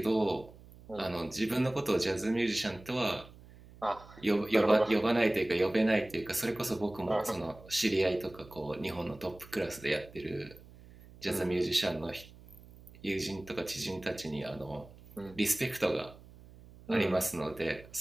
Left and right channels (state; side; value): noise; right; hum, 21 dB below the sound